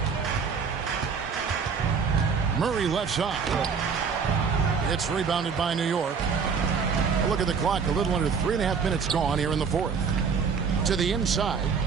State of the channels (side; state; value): left; quieter; 5.9 dB